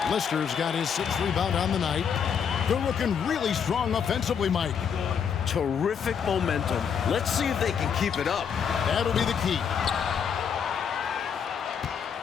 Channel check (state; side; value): quieter; right; 7.3 dB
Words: Lister's got his 6th rebound on the night. They're looking really strong offensively, Mike. Terrific momentum. Let's see if they can keep it up. That'll be the key.